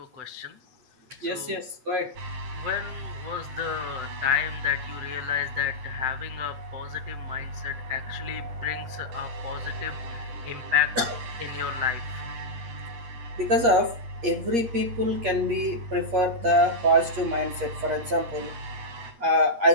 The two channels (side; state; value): left; late; 8.5 ms